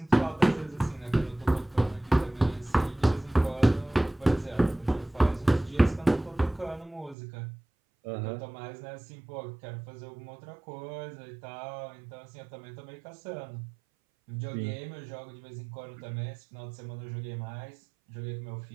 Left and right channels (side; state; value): left; drops out; at 7.2 s